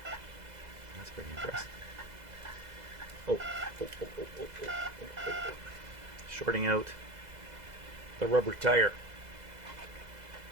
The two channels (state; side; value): late; left; 2.0 ms